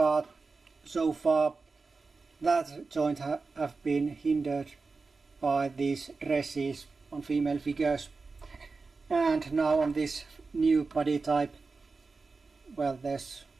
so far that joint have been hindered by these dresses on female figures, and now on this new body type, well, there's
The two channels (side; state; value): left; quieter; 4.2 dB